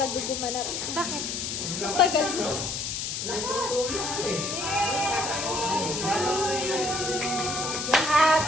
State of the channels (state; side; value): noise; left; hiss, 3 dB below the sound